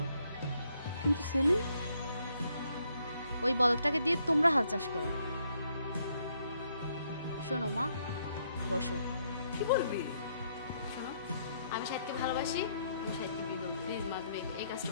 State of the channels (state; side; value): inverted; both; correlation -0.73